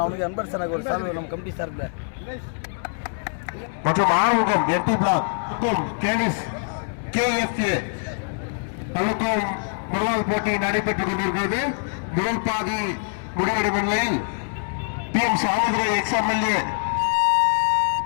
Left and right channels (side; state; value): right; silent; digital silence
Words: அவனுக்கு அன்பர் சார் ஒரு சார்பு நம்ம கமிட்டி சார்பில் மற்றும் ஆறுமுகம் எம்டி பிளாக் கேனிஸ் KFA தனக்கும் முதலாவது போட்டி நடைபெற்றுக் கொண்டிருக்கிறது. முதல் பாதி முடிவடையும் நிலையில் PM Samuthirai XMLA